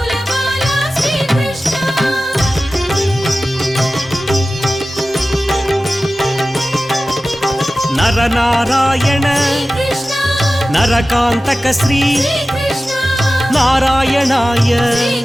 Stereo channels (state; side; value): normal; both; correlation 0.95